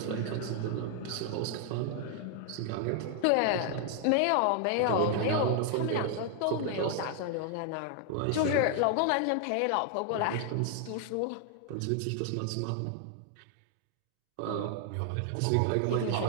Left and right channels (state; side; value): different; both; correlation 0.00